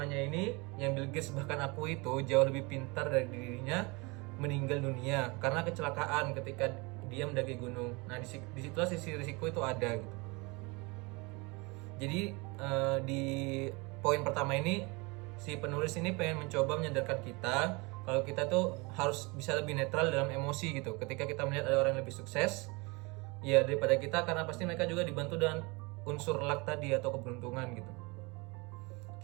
ini yang Bill Gates bahkan akui itu jauh lebih pintar dari dirinya meninggal dunia karena kecelakaan ketika dia mendaki gunung. Nah, disitulah sisi risiko itu ada gitu. Jadi di poin pertama ini si penulis ini pengen mencoba menyadarkan kita kalau kita tuh harus bisa lebih netral dalam emosi gitu ketika kita melihat ada orang yang lebih sukses ya daripada kita, karena pasti mereka juga dibantu dengan unsur luck tadi atau keberuntungan gitu.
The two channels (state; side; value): quieter; left; 27.0 dB